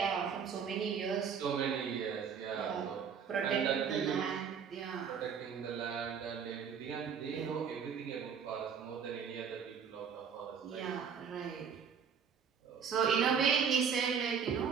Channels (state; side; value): quieter; left; 6.9 dB